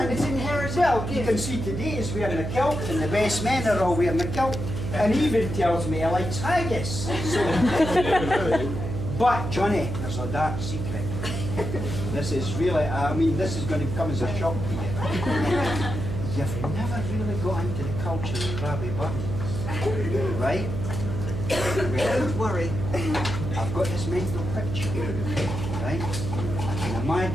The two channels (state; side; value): noise; right; hum, 4 dB below the sound